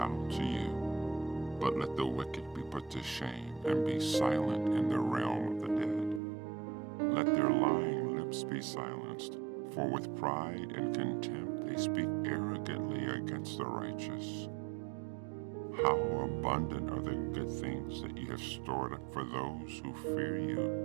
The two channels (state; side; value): drops out; left; at 6.2 s